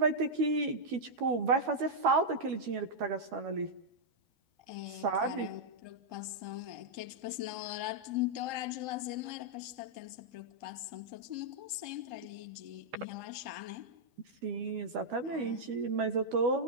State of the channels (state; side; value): late; left; 12 ms